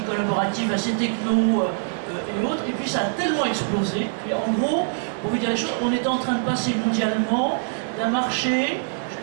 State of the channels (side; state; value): left; silent; digital silence